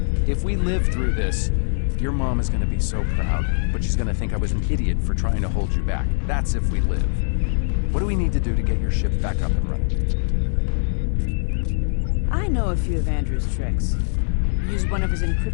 If we live through this, your mom is gonna be so proud, but she's gonna think I was an idiot for trying to hold you back. That's if we live. What do we need to do to get your ship back up and running? I know a few of Andrew's tricks. Used one of his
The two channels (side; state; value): right; silent; 64 dB below the other